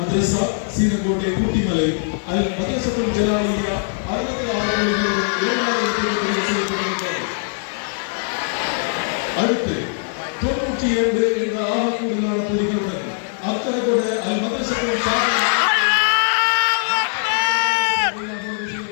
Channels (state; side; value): silent; right; digital silence